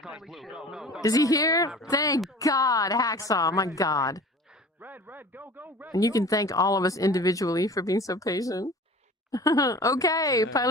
blue. Go. Is he here? Thank God, Hacksaw. My God. Red, go, red. And you can thank all of us individually for being so patient. Okay,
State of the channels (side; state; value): both; normal; correlation 0.41